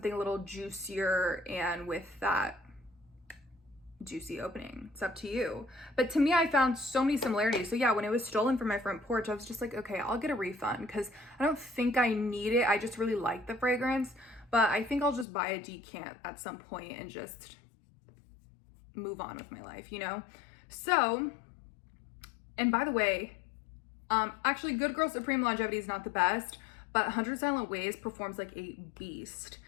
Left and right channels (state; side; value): drops out; right; at 15.2 s